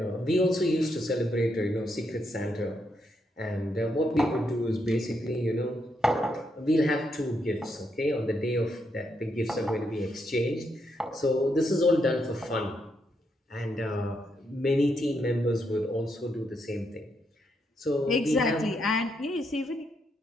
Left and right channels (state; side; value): normal; both; correlation 0.79